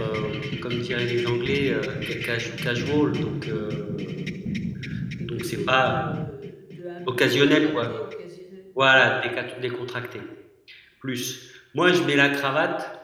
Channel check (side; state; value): both; identical; correlation 1.00